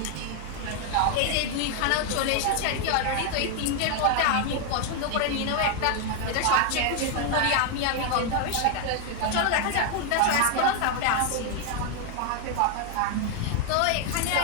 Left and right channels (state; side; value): different; both; correlation 0.01